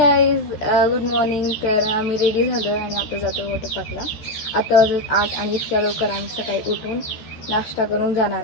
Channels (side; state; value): right; late; 14 ms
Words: गुड मॉर्निंग. तर आम्ही रेडी झालो आणि आता जातो वॉटर पार्कला. आता वाजत 8 आणि इतक्या लवकर आम्ही सकाळी उठून नाश्ता करून जाणार